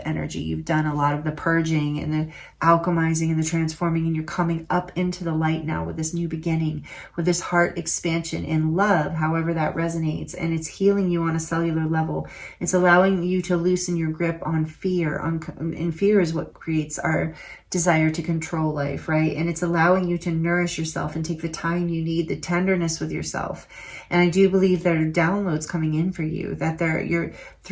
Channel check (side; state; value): both; identical; correlation 1.00